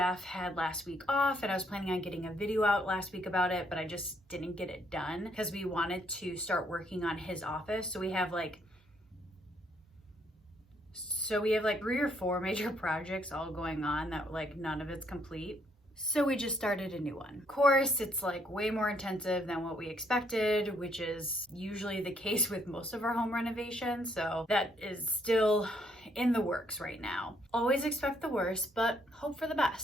had last week off and I was planning on getting a video out last week about it, but I just didn't get it done because we wanted to start working on his office. So we have like 3 or 4 major projects all going on that like none of it's complete. So we just started a new one. Of course, it's like way more intensive than what we expected, which is usually the case with most of our home renovations. So that is still in the works right now. Always expect the worst, but hope for the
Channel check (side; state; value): both; normal; correlation 0.70